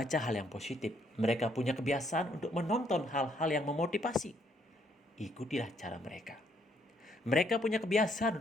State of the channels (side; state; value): both; normal; correlation 0.70